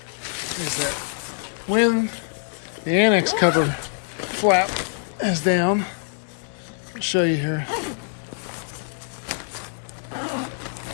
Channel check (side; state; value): right; silent; 57 dB below the other